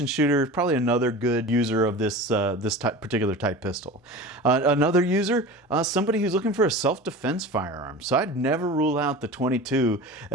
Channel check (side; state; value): both; normal; correlation 0.34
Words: shooter is probably another good user of this particular type pistol. Another user, somebody who's looking for a self-defense firearm. So I'd never rule out the 22